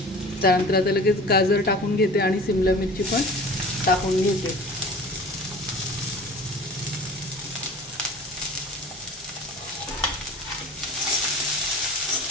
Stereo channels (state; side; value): normal; both; correlation 0.41